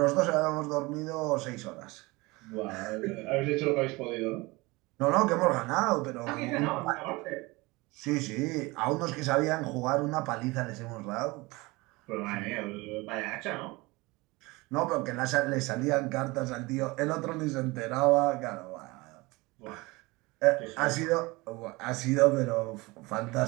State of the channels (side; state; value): left; quieter; 23.2 dB